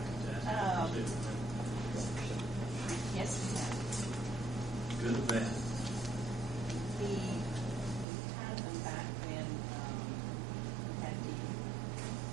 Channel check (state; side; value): drops out; left; at 8.1 s